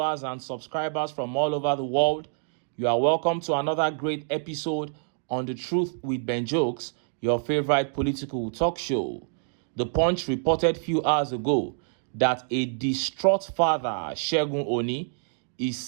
and subscribers from all over the world. You are welcome to another great episode on The Truth with Ben Jokes, your favorite political talk show. The Punch reported few hours ago that a distraught father, Segun Oni, is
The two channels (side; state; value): left; silent; digital silence